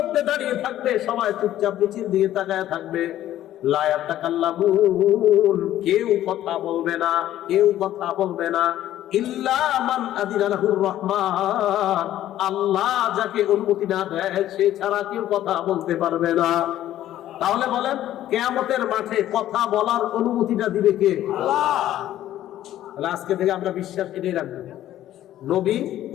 দাঁড়িয়ে থাকবে, সবাই চুপচাপ নিচের দিকে তাকায় থাকবে। লা ইয়াতাকাল্লামুন, কেউ কথা বলবে না, কেউ কথা বলবে না। ইল্লা মান আযিনা লাহুর রহমান, আল্লাহ যাকে অনুমতি না দেয় সে ছাড়া কেউ কথা বলতে পারবে না। তাহলে বলেন কিয়ামতের মাঠে কথা বলার অনুমতিটা দিবে কে? আল্লাহ। তাহলে আজকে থেকে আমরা বিশ্বাস এটাই রাখবো, নবী,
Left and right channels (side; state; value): right; quieter; 12.9 dB